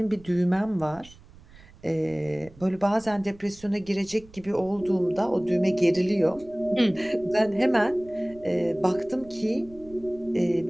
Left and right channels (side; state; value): right; noise; rumble, 23 dB below the sound